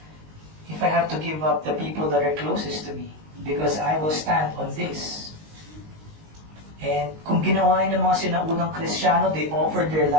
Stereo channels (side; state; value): left; late; 19 ms